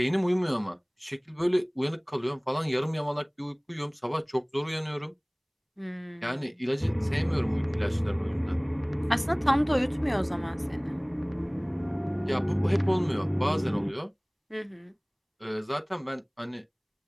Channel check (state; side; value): identical; both; correlation 1.00